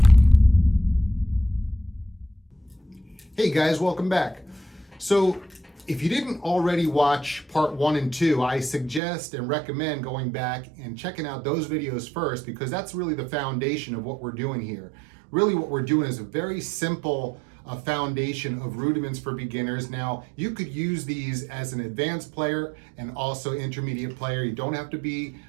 Hey guys, welcome back. So if you didn't already watch part 1 and 2, I suggest and recommend going back and checking out those videos first, because that's really the foundation of what we're doing here. Really what we're doing is a very simple foundation of rudiments for beginners. Now, you could use these as an advanced player and also intermediate player. You don't have to be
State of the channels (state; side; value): drops out; left; at 9.0 s